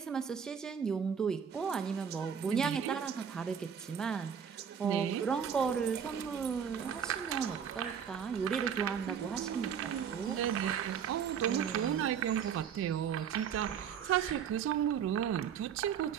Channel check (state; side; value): quieter; left; 7.7 dB